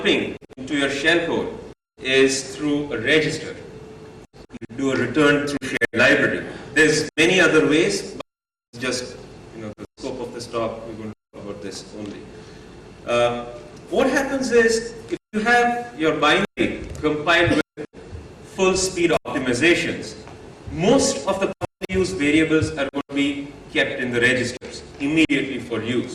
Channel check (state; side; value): identical; both; correlation 1.00